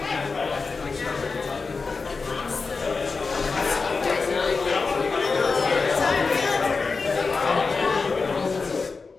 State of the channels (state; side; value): quieter; right; 4.5 dB